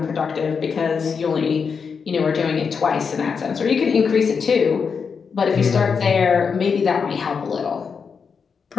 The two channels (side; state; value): right; quieter; 5.9 dB